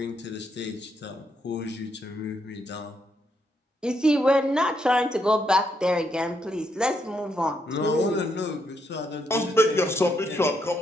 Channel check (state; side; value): normal; both; correlation 0.77